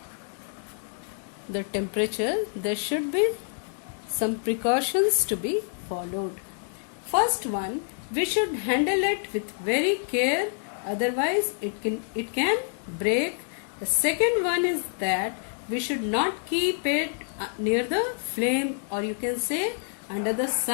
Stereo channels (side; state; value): right; silent; digital silence